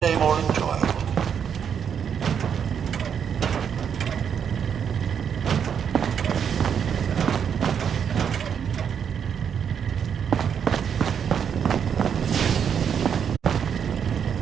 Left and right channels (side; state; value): left; quieter; 7.8 dB